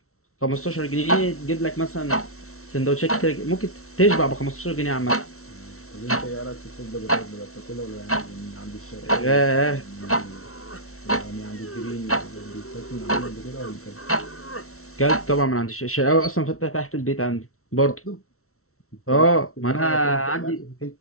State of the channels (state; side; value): late; right; 0.63 ms